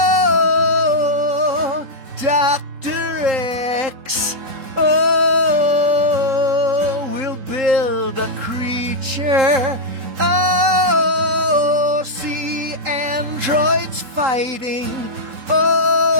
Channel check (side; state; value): left; late; 3.8 ms